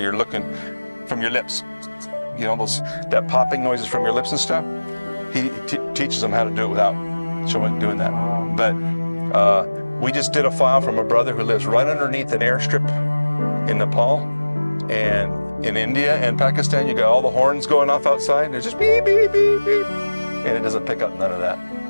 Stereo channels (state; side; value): inverted; both; correlation -1.00